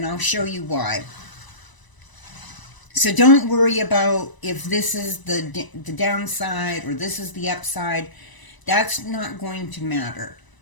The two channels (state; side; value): late; right; 1.0 ms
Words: I'll show you why. So don't worry about if this is the downside or this is the upside. That's not going to matter.